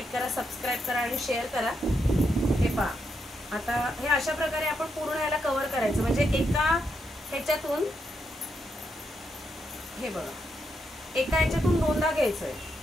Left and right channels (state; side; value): normal; both; correlation 0.81